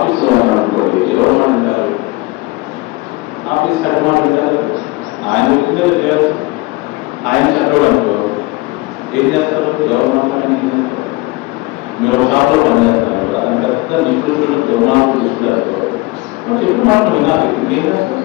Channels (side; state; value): right; quieter; 22.0 dB